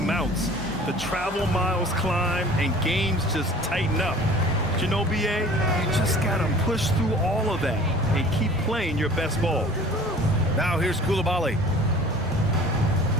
The travel miles climb and games just tighten up. But you know, BA, you just got to push through all of that and keep playing your best ball. Now here's Coulibaly.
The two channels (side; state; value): both; normal; correlation 0.46